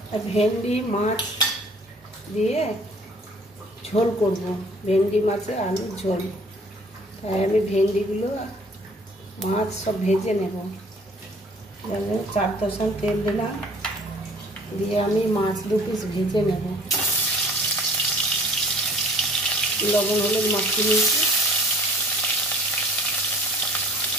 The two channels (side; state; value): both; normal; correlation 0.52